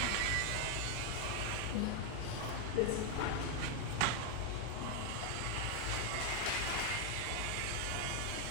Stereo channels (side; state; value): both; different; correlation 0.00